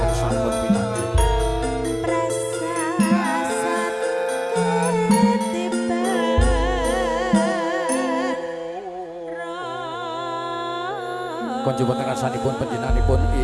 Konjo wonten ngarsanipun panjenenganipun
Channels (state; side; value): identical; both; correlation 1.00